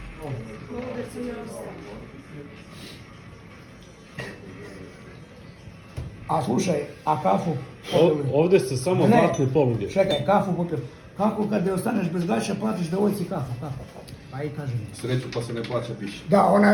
A slušaj, a kafu? Ovdje se samo Ne. zlatne poluge. Čekaj, kafu popio. Kako kad ostaneš bez gaća, platiš devojci kafu, kako? Pa i kaži mi. Sreću pa se ne plaća piše. Da,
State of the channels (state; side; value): identical; both; correlation 1.00